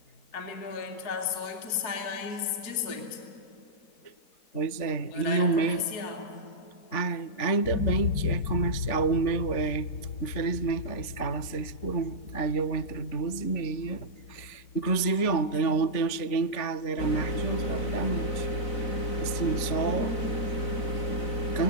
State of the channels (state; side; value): late; right; 3.5 ms